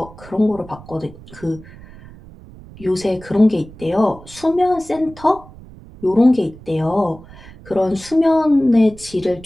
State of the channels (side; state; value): right; noise; rumble, 20 dB below the sound